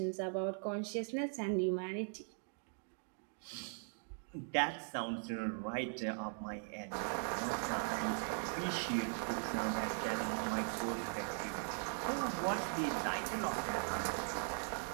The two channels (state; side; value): silent; left; 51 dB below the other